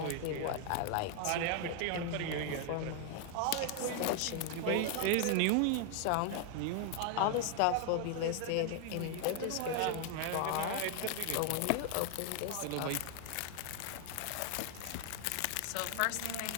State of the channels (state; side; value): different; both; correlation 0.00